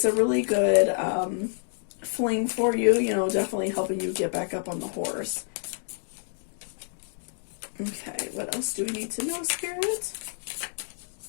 a really good fling for you, you know, definitely helping you get back up on the horse. Okay, what else do we need to know, Spirit?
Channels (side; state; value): right; silent; digital silence